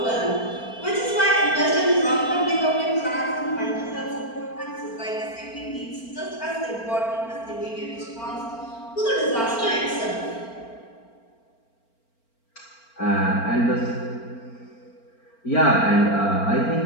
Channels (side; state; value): right; late; 4.4 ms